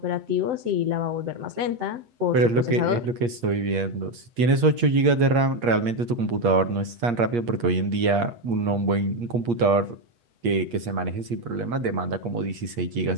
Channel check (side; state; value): left; late; 8.5 ms